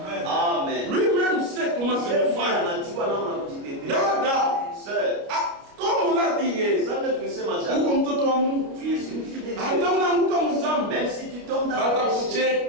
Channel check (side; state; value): left; late; 29 ms